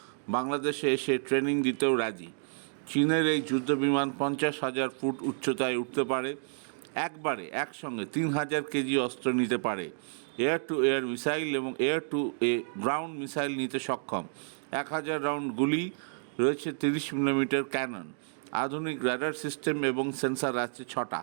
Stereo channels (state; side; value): silent; left; digital silence